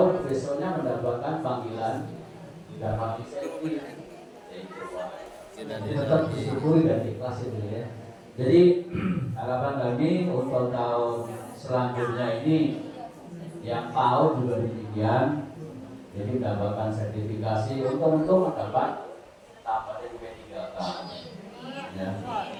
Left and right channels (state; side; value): identical; both; correlation 1.00